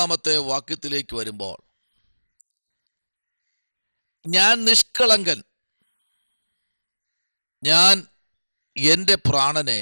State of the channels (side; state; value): both; inverted; correlation -1.00